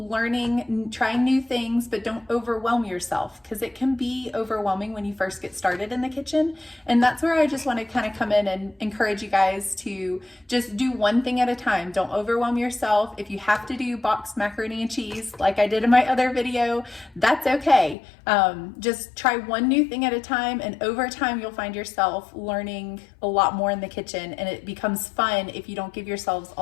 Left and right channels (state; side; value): drops out; right; at 17.9 s